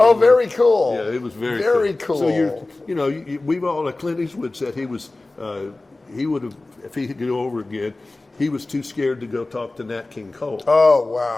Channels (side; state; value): right; quieter; 3.0 dB